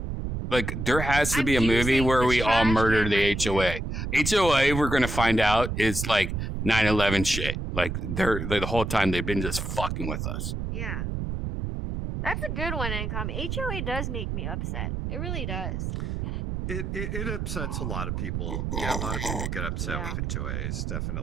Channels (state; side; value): noise; right; rumble, 3 dB below the sound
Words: there has to be a movie using where the we all trash murder can the right here. HOA. HOA, we're going to find out, is like 9/11 shit. Like they're the whole time they've been just fucking with us. Yeah. That's a good one, Income. HOA does make me upset. It really does. It upsets a lot of people. Yeah, a lot of people get upset with HOAs,